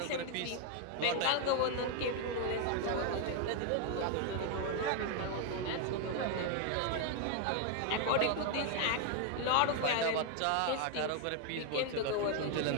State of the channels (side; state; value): both; different; correlation 0.01